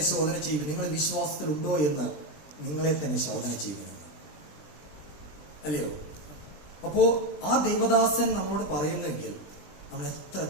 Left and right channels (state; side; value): late; right; 20 ms